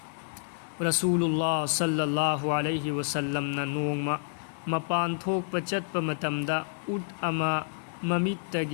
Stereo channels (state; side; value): silent; right; digital silence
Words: ꯔꯁꯨꯂꯨꯜꯂꯥꯍ ꯁꯜꯂꯜꯂꯥꯍु ꯑꯂꯩꯍꯤ ꯋꯁꯜꯂꯝꯅ ꯅꯣꯡꯃ ꯃꯄꯥꯟ ꯊꯣꯛꯄ ꯆꯠꯄ ꯃꯇꯝꯗ ꯎꯠ ꯑꯃ